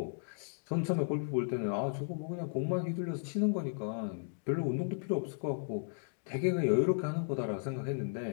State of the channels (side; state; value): right; silent; digital silence